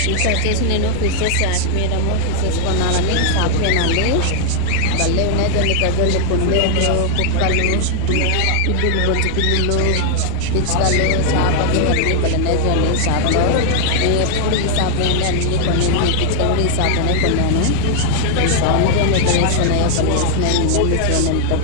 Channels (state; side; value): different; both; correlation 0.00